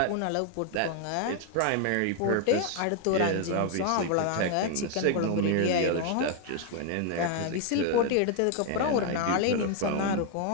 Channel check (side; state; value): both; different; correlation 0.01